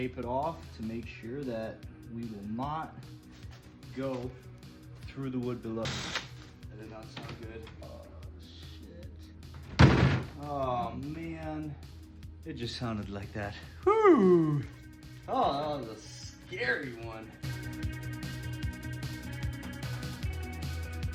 it off to make sure that we will not go through the wood below. That did not sound good. Oh, shit. Oh, man. It just sounded like that. Whew. Oh, that was a scary one.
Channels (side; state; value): both; identical; correlation 1.00